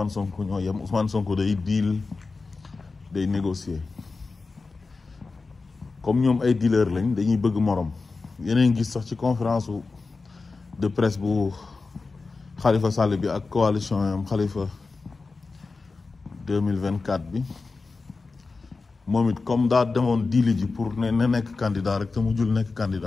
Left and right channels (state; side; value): quieter; right; 4.0 dB